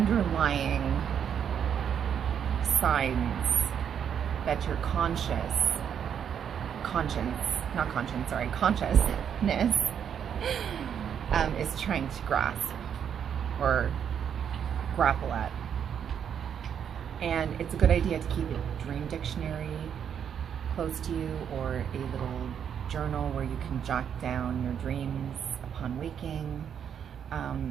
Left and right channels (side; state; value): left; quieter; 8.3 dB